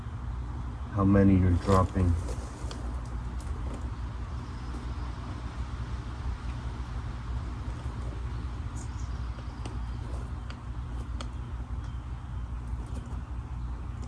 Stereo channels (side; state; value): both; identical; correlation 1.00